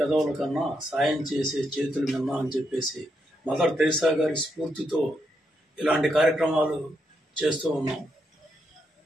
కన్నా సాయం చేసే చేతులు మిన్నా అని చెప్పేసి మదర్ తెరిసా గారి స్ఫూర్తితో ఇలాంటి కార్యక్రమాలు చేస్తూ ఉన్నాం.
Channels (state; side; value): normal; both; correlation 0.80